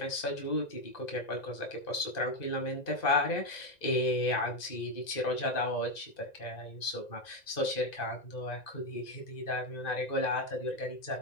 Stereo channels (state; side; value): late; right; 1.9 ms